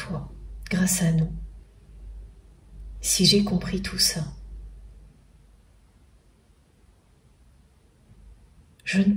grâce à nous, si j'ai compris tout ça. Je ne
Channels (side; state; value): both; identical; correlation 1.00